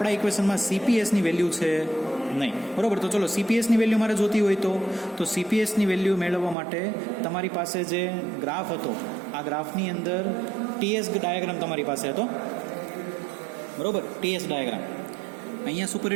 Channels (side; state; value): left; drops out; at 6.6 s